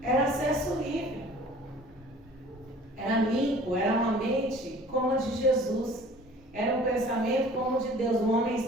era acesso livre. Era limpo, era uma mente como a de Jesus. Era um pensamento como o de Deus. O homem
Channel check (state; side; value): normal; both; correlation 0.48